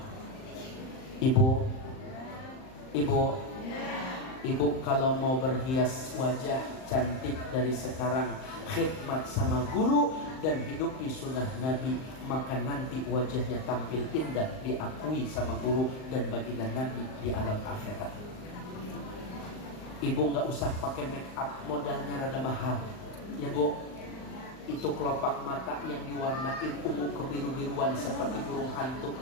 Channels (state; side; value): late; right; 38 ms